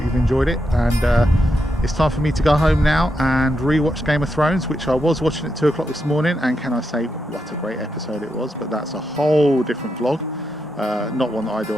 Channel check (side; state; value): both; normal; correlation 0.84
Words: you've enjoyed it. And it's time for me to go home now and re-watch Game of Thrones, which I was watching at 2 o'clock this morning. And can I say, what a great episode it was. But that's a whole different vlog. Not one that I do